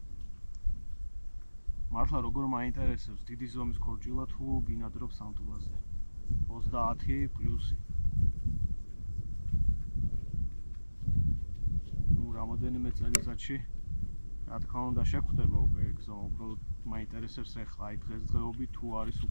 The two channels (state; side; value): inverted; both; correlation -1.00